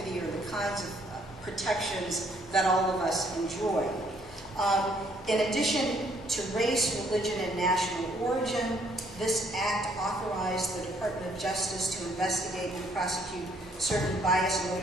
or the kinds of protections that all of us enjoy. In addition to race, religion, and national origin, this act authorized the Department of Justice to investigate and prosecute certain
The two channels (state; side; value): normal; both; correlation 0.66